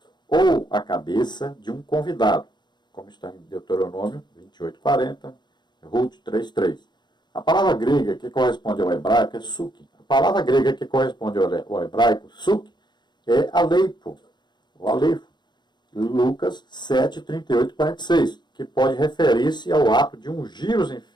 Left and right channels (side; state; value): right; late; 0.21 ms